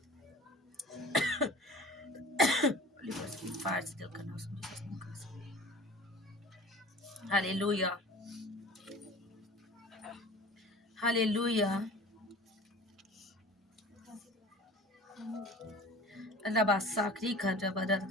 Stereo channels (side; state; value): both; normal; correlation 0.42